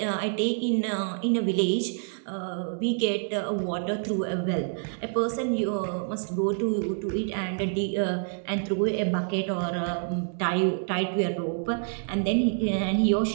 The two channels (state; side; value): silent; left; digital silence